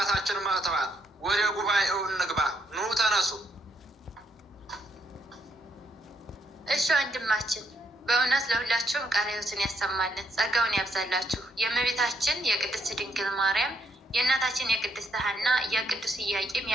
መጥተዋል። ወደ ጉባኤው እንግባ። ኑ ተነሱ። እሺ ወንድማችን፣ በእውነት ለሁላችሁም ቃለ ሕይወትን ያሰማልን፣ ጸጋውን ያብዛላችሁ። የእመቤታችን የቅድስት ድንግል ማርያም፣ የእናታችን የቅድስት ሐና፣ የቅዱስ ኢያቄም፣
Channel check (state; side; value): normal; both; correlation 0.75